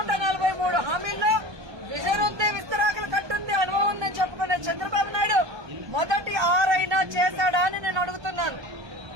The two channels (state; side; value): late; left; 1.2 ms